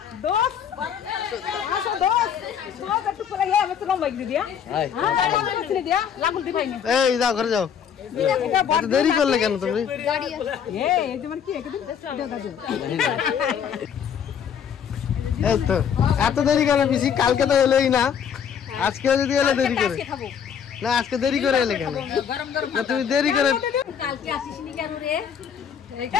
দোস আসো দোস একটু পরে আমি তো লম্বা গিয়ে দিয়া। হ্যাঁ গাড়ি দিয়া লাগুল দি ভাইনি। এই যাও ঘরে যাও। এত দেরি করলে কেন তুমি? এই যে মানে কি একদিন দাদু। এই তো এত দেরি কেন পিসি? কালকে তো এলোই না, আজকে যদি এলো দেরি করে। না আজকে দেরি করে এলে কেন? না তুমি দেরি করে কালকে আসিসনি কেন রে?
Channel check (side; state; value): right; quieter; 7.9 dB